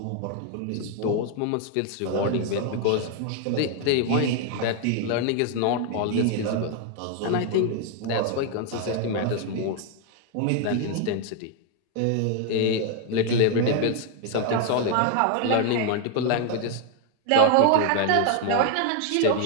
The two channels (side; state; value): both; different; correlation 0.00